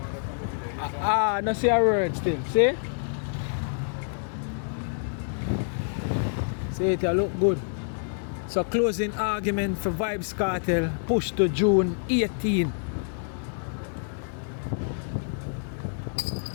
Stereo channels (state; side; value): silent; right; digital silence